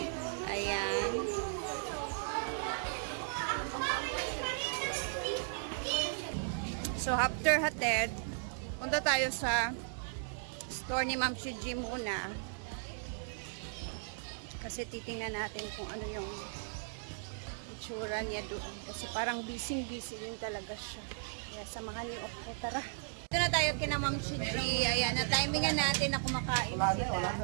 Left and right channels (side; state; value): left; silent; digital silence